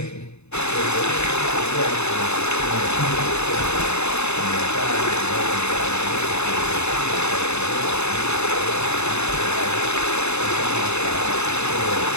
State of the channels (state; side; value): late; right; 0.81 ms